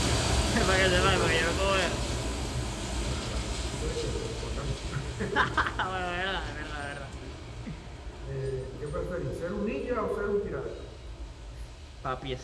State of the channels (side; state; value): both; identical; correlation 1.00